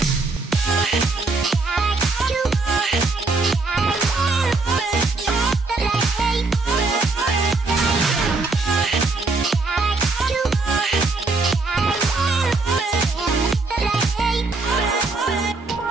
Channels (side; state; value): left; quieter; 3.6 dB